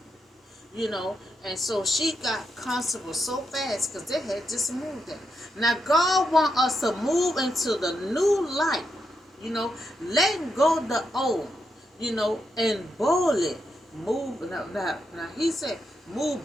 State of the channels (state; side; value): normal; both; correlation 0.83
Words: you. And so she got comfortable so fast because they had just moved there. Now God wants us to move into the new life, letting go of the old, and boldly move. Now he said move